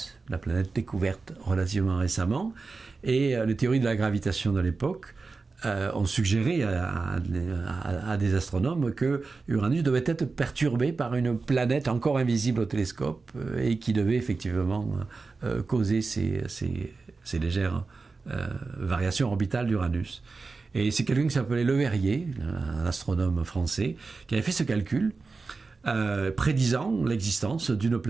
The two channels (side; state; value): left; quieter; 4.1 dB